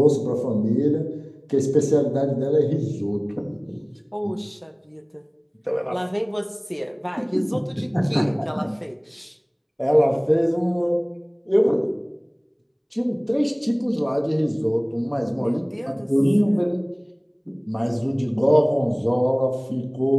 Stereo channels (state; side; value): identical; both; correlation 1.00